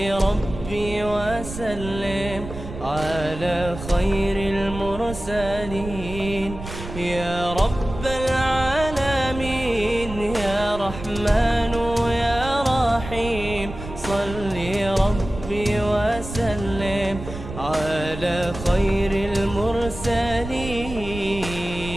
ربي وسلم على خير المرسلين. يا رب العالمين يا رحمن يا رحيم، صلي ربي وسلم على خير المرسلين.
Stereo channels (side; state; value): right; noise; rumble, 10 dB below the sound